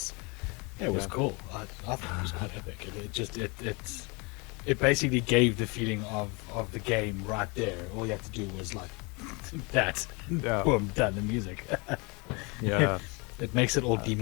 cool. I thought it was quite epic. It basically gave the feeling of the game right there. All you have to do was like that. Yeah. Boom, done the music. Yeah. It makes it all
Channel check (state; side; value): quieter; right; 29.2 dB